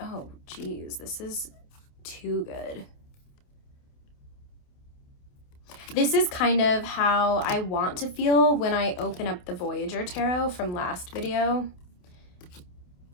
geez, this is too good. This is kind of how I want to feel when I open up the Voyager Tarot from last video.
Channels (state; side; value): late; right; 28 ms